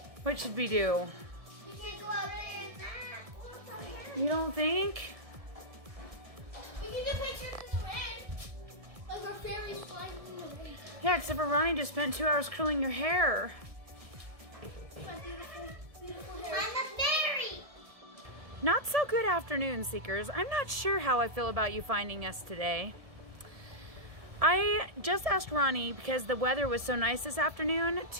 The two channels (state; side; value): late; left; 1.7 ms